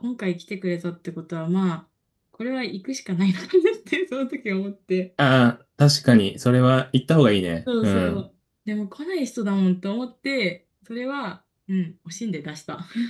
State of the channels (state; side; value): identical; both; correlation 1.00